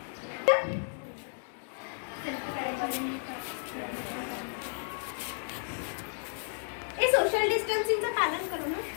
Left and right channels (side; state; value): right; silent; 56 dB below the other